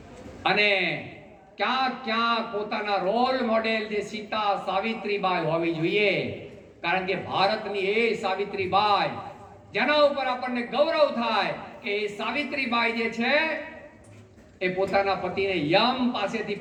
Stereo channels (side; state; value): both; identical; correlation 1.00